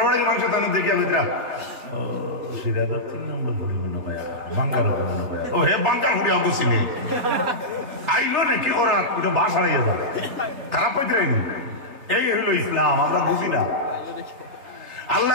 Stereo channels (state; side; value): late; left; 3.6 ms